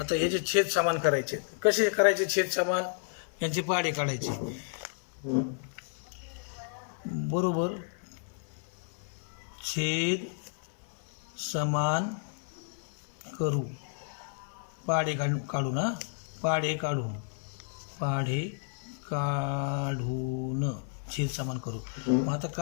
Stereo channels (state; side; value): silent; right; 57 dB below the other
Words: ह्याचे छेद समान करायचे. कसे करायचे छेद समान? यांचे पाढे काढायचे. बरोबर. छेद समान करू. पाढे काढू ना. पाढे काढून छेद समान करू. मग आता